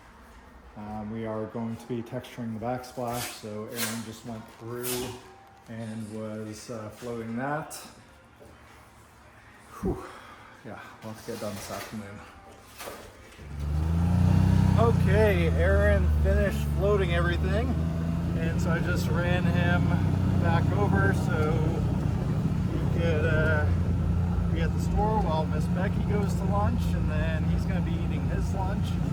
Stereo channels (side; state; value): both; identical; correlation 1.00